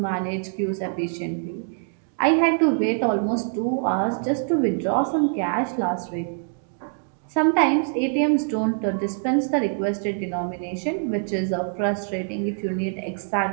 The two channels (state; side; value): silent; left; 61 dB below the other